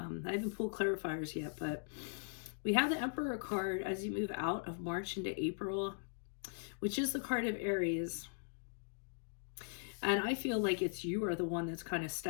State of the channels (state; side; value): silent; right; digital silence